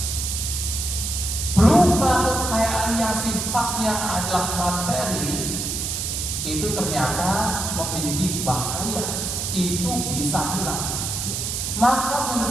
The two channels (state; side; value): noise; right; hiss, 2 dB below the sound